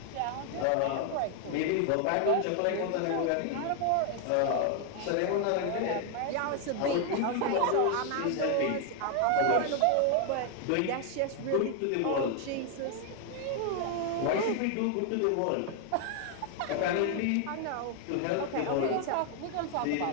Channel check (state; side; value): different; both; correlation 0.00